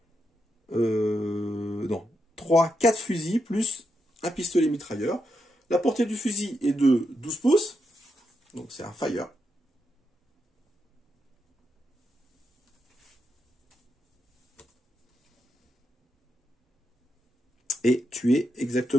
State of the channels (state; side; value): normal; both; correlation 0.84